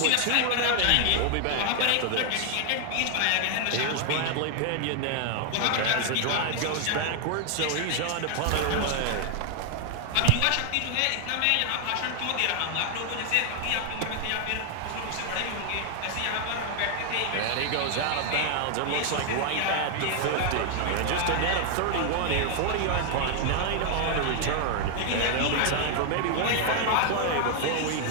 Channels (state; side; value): different; both; correlation 0.00